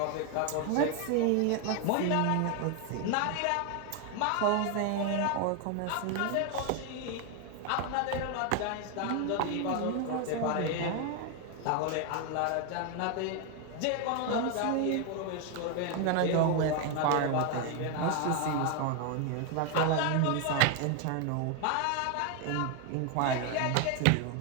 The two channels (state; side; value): different; both; correlation 0.01